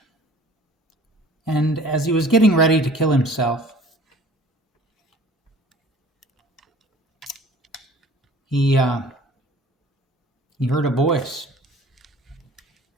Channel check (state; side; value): normal; both; correlation 0.48